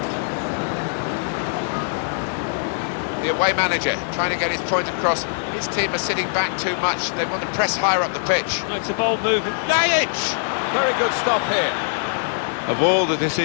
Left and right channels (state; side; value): silent; right; digital silence